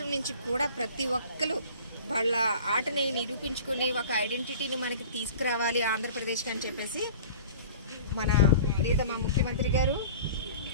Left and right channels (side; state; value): both; inverted; correlation -0.42